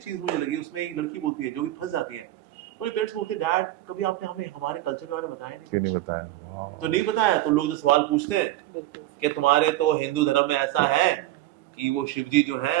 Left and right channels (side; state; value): left; quieter; 15.4 dB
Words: मुझे लगी, उसमें एक लड़की बोलती है जो भी फंस जाती है, मेरे पेरेंट्स बोलते हैं डैड कभी आपने हमें हमारे कल्चर के बारे में बताया नहीं बताया। तो नहीं बताया तो लोग जो सवाल पूछते हैं कि तुम्हारे तो हिंदू धर्म में ऐसा है कि वो शिव जी जो है